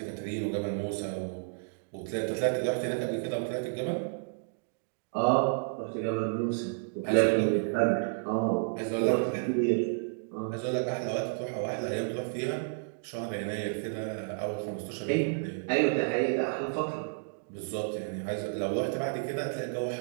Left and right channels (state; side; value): silent; left; digital silence